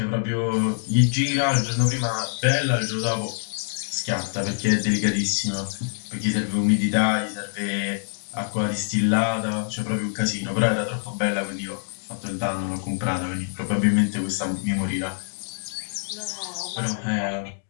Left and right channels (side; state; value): right; silent; digital silence